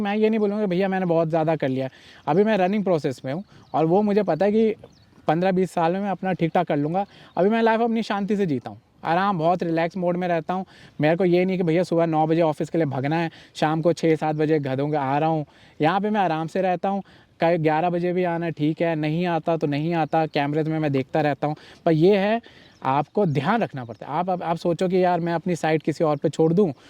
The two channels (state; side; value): identical; both; correlation 1.00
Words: ये नहीं बोलूँगा भैया मैंने बहुत ज़्यादा कर लिया। अभी मैं रनिंग प्रोसेस में हूँ, और वो मुझे पता है कि 15-20 साल में मैं अपना ठीक ठाक कर लूँगा। अभी मैं लाइफ अपनी शांति से जीता हूँ, आराम, बहुत रिलैक्स मोड में रहता हूँ। मेरे को ये नहीं कि भैया सुबह 9 बजे ऑफिस के लिए भागना है, शाम को 6-7 बजे घर आ रहा हूँ। यहाँ पे मैं आराम से रहता हूँ, कहीं 11 बजे भी आना ठीक है, नहीं आता तो नहीं आता, कैमरे में मैं देखता रहता हूँ। पर ये है आपको ध्यान रखना पड़ता है। आप सोचो कि यार मैं अपनी साइट किसी और पे छोड़ दूँ